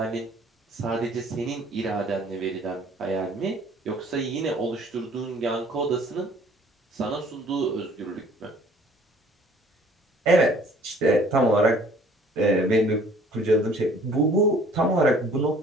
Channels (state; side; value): normal; both; correlation 0.55